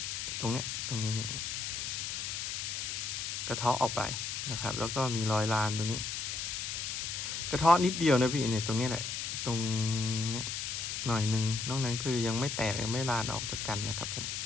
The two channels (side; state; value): left; noise; hiss, 3 dB below the sound